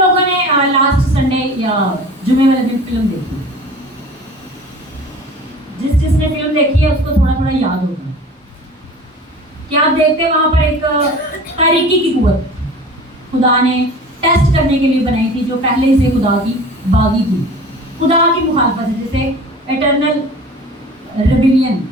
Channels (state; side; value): normal; both; correlation 0.41